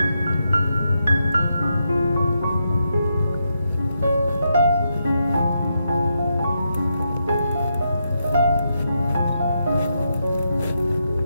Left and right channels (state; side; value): inverted; both; correlation -0.82